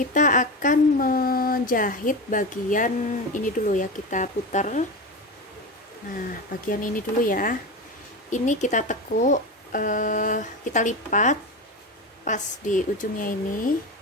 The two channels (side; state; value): both; normal; correlation 0.22